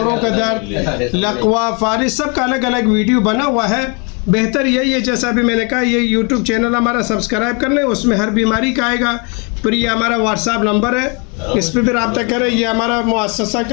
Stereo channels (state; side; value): quieter; right; 33.4 dB